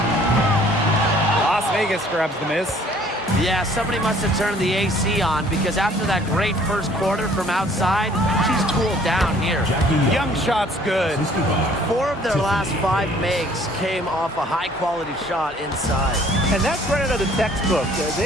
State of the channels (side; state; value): both; normal; correlation 0.57